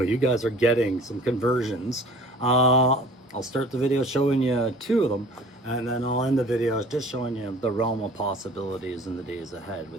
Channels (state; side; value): normal; both; correlation 0.48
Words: you guys are getting some conversions. I'll start the video showing you 2 of them, and then I'll end the video just showing you the realm of possibilities in the days ahead